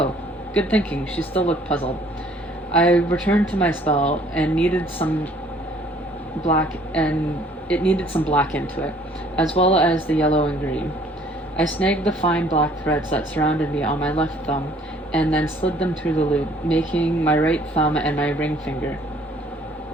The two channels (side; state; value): both; normal; correlation 0.58